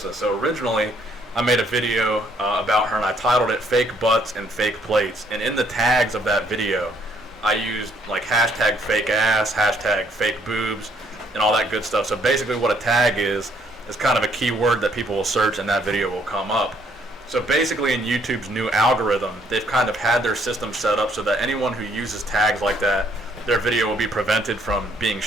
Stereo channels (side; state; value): both; normal; correlation 0.67